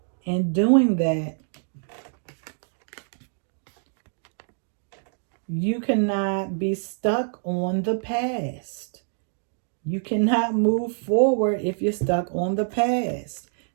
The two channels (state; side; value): silent; left; digital silence